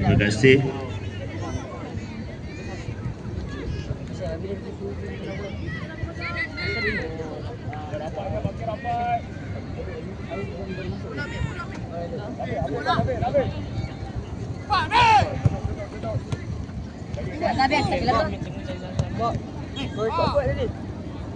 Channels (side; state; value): both; identical; correlation 1.00